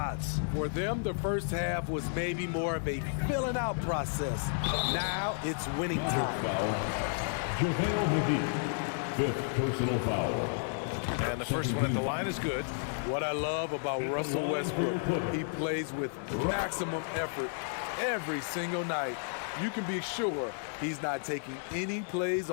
For them, the first half was maybe more of a filling out process. Now it's winning time. JaVale McGee, 5th personal foul. And the first one at the line is good. What I love about Russell Westbrook, he plays with maximum effort every single night. You can be sure he's not taking any plays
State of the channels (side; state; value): right; silent; digital silence